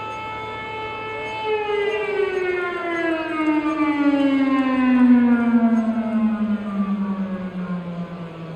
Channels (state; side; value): identical; both; correlation 1.00